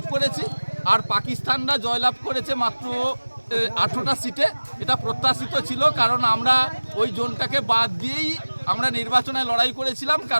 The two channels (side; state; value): both; inverted; correlation -1.00